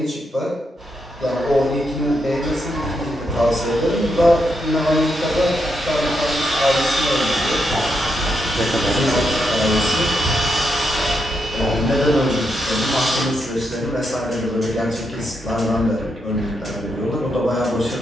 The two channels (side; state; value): both; normal; correlation 0.81